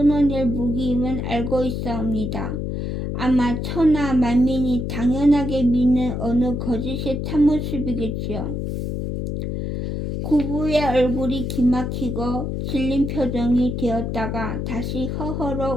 무기임은 알고 있사옵니다. 아마 천하 만민이 당연하게 믿는 어느 거짓의 참모습이겠지요. 구부의 얼굴이 기막히고 질린 표정이 되었다가 다시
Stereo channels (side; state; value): left; noise; hum, 3 dB below the sound